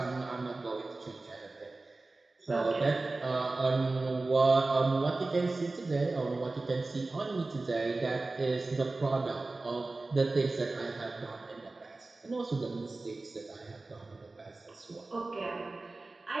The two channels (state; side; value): quieter; left; 3.3 dB